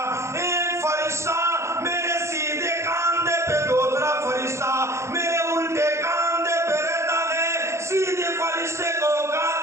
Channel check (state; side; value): late; left; 0.14 ms